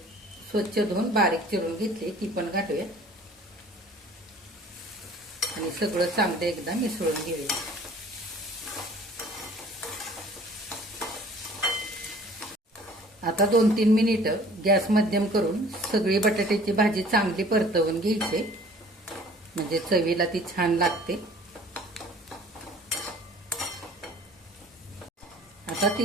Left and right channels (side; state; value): both; normal; correlation 0.50